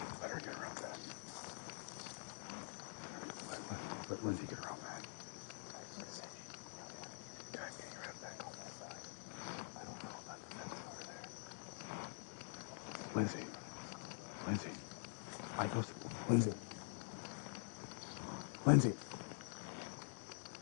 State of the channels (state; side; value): silent; right; digital silence